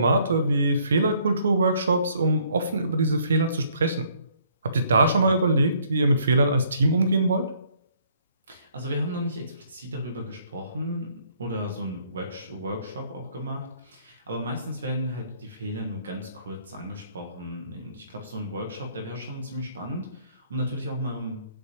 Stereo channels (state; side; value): inverted; both; correlation -0.64